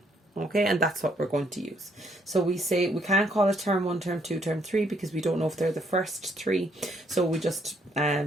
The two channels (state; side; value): normal; both; correlation 0.70